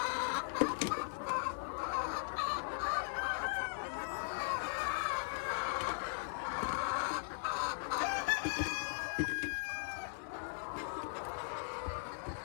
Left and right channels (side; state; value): right; silent; 52 dB below the other